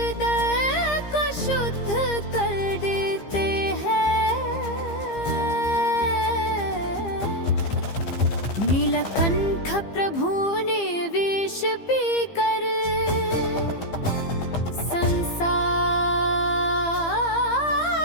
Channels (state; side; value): late; right; 15 ms